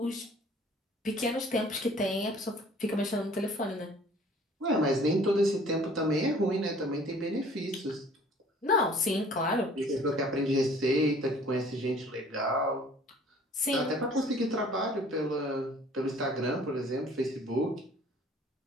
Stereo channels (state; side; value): normal; both; correlation 0.52